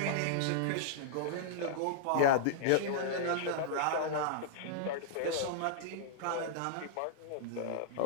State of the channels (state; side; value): different; both; correlation -0.02